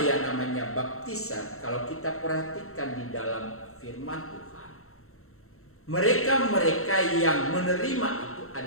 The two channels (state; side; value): late; right; 0.63 ms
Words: yang namanya baptisan, kalau kita perhatikan di dalam firman Tuhan, mereka-mereka yang menerima itu